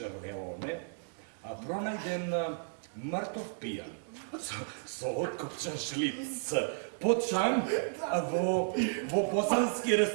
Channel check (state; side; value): silent; left; digital silence